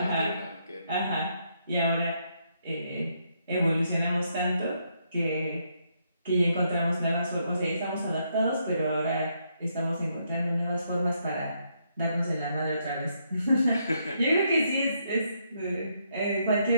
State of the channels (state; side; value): inverted; both; correlation -0.76